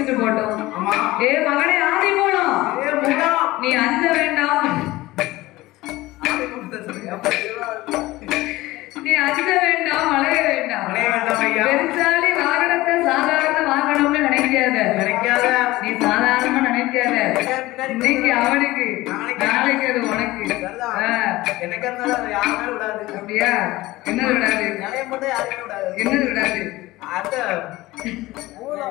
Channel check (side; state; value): right; quieter; 18.6 dB